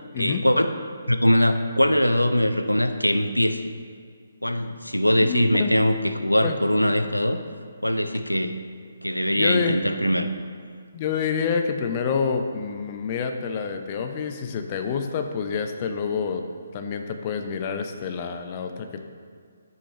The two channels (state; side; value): inverted; both; correlation -0.87